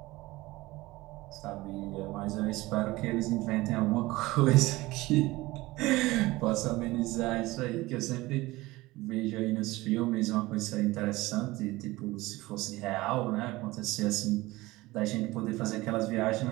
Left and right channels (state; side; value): quieter; left; 19.7 dB